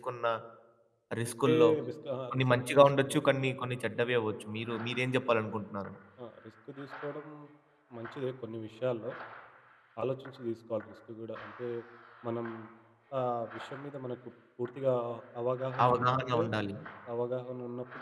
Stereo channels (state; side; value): identical; both; correlation 1.00